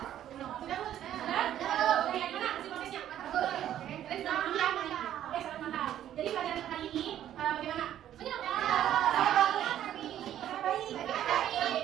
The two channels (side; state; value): left; quieter; 11.4 dB